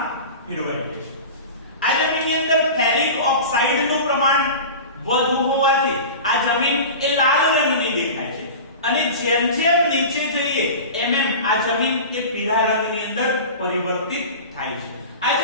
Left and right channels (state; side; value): inverted; both; correlation -0.33